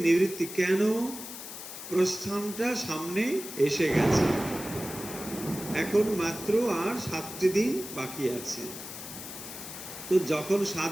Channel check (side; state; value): left; noise; hiss, 10 dB below the sound